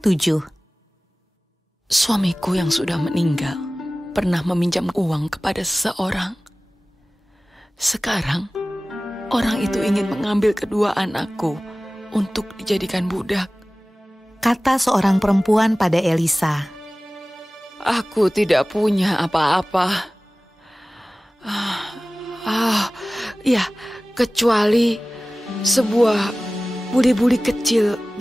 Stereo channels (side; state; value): both; normal; correlation 0.97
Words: Suamiku yang sudah meninggal pernah meminjam uang kepada seseorang. Sekarang orang itu ingin mengambil kedua anakku untuk dijadikan budak, kata seorang perempuan pada Elisa. "Aku tidak punya apa-apa. Ya, kecuali sebuah buli-buli kecil